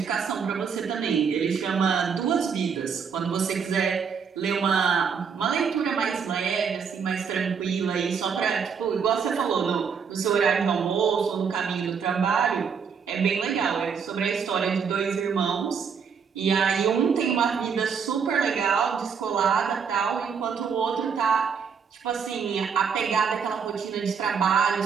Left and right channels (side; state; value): left; quieter; 6.5 dB